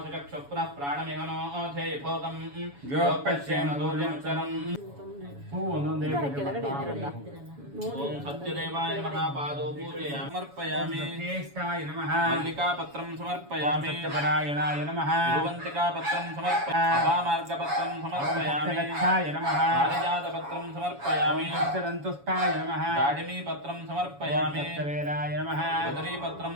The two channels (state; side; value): late; left; 7.1 ms